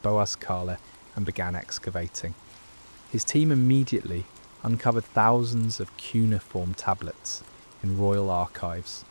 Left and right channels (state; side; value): inverted; both; correlation -1.00